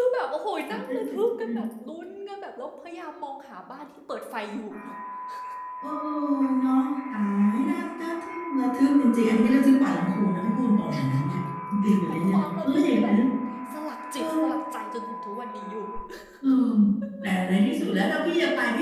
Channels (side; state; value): both; identical; correlation 1.00